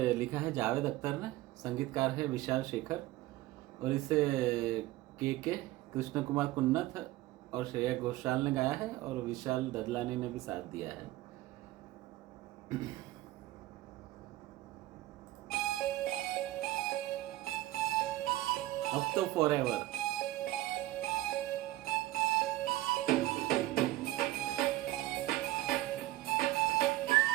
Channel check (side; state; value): left; quieter; 16.9 dB